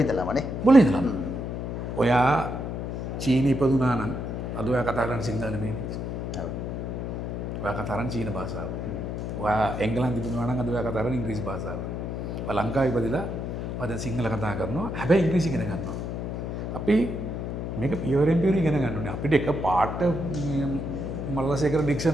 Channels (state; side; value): noise; left; hum, 4 dB below the sound